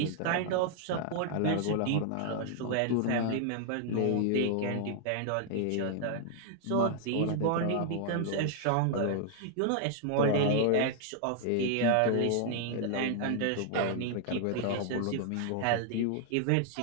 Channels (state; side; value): different; both; correlation -0.01